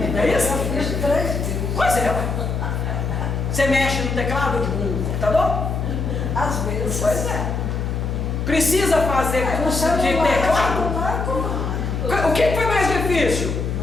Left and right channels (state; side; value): noise; left; hum, 2 dB below the sound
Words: É isso? Pois é. Você mexe no teclado de um computador? Às vezes. Pois é. Precisa fazer curso de teclado? O que foi mais difícil?